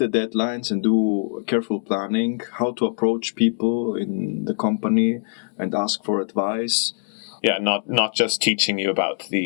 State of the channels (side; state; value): right; silent; digital silence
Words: deadlines and do careful planning, how to approach people in the company and ask for advice. Yeah, not just teaching you about